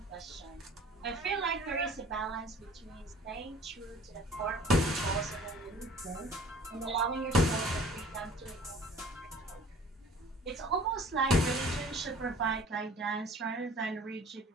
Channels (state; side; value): normal; both; correlation 0.49